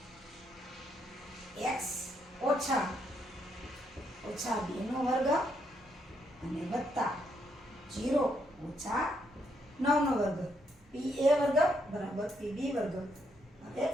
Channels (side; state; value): both; normal; correlation 0.76